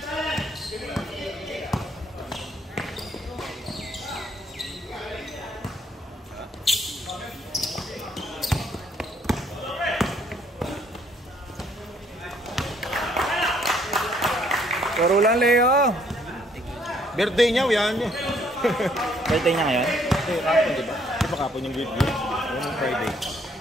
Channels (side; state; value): both; normal; correlation 0.66